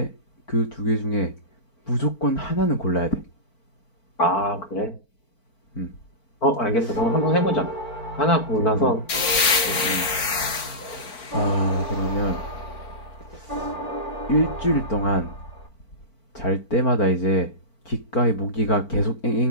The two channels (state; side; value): late; right; 4.5 ms